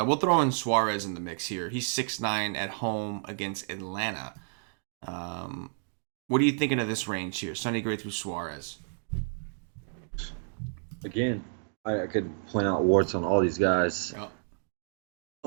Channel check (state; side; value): silent; left; digital silence